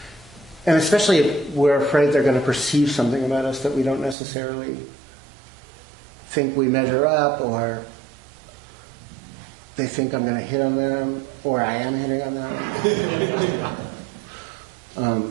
And especially if we're afraid they're going to perceive something about us that we don't necessarily think we measure up, or they think I'm going to hit on them, or I am hitting on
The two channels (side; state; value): left; drops out; at 4.2 s